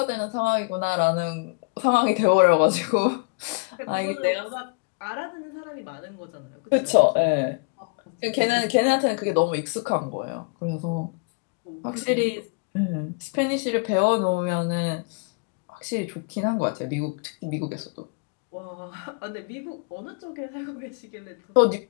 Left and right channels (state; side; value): quieter; right; 32.1 dB